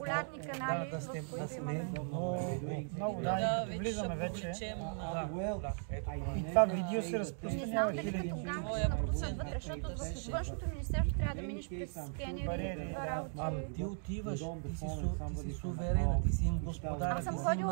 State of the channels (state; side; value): silent; left; 53 dB below the other